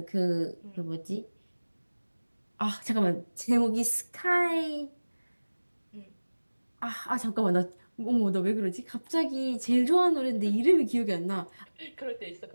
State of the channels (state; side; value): inverted; both; correlation -1.00